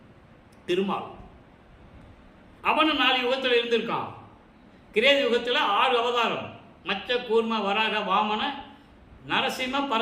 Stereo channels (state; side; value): identical; both; correlation 1.00